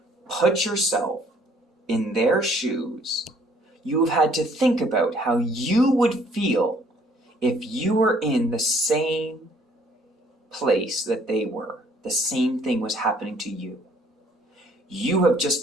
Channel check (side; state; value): both; normal; correlation 0.61